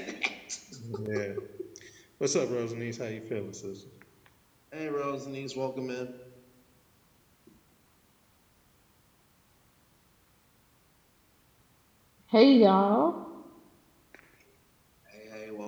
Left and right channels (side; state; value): both; identical; correlation 1.00